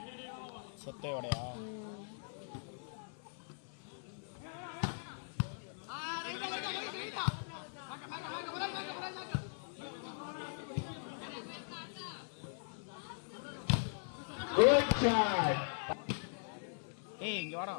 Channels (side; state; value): right; silent; 51 dB below the other